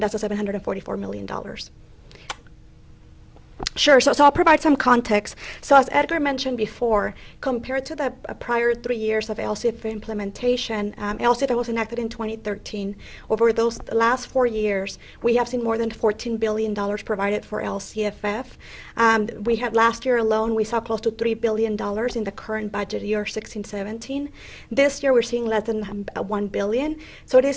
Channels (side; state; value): both; identical; correlation 1.00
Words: that's the $744 million. Sure, so I'll provide some context. So as Edgar mentioned before, compared to the prior 3 years of LCFF implementation, LCFF was enacted in 2013. Over those last 4 years, we have seen more than $14 billion provided for LCFF. We had last year alone, we saw close to $3 billion in the current budget year, 16-17. This year, we're seeing less than $1 billion. So it